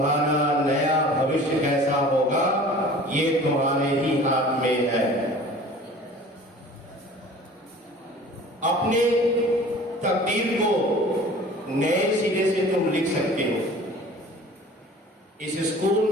नया भविष्य कैसा होगा ये तुम्हारे ही हाथ में है। अपने तकदीर को नए सिरे से तुम लिख सकते हो। इस स्कूल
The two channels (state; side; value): normal; both; correlation 0.45